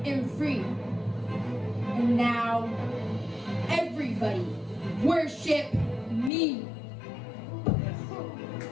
am free. And now, everybody, worship me.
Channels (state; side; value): drops out; right; at 6.3 s